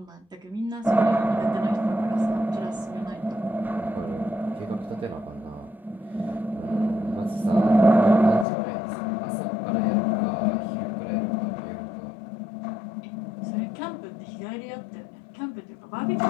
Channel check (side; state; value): right; drops out; at 8.5 s